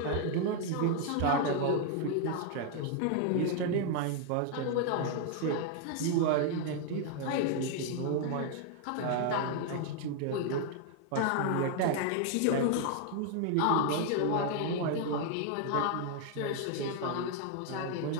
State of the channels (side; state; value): both; different; correlation 0.00